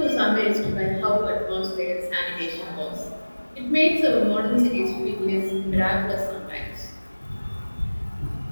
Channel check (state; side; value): inverted; both; correlation -1.00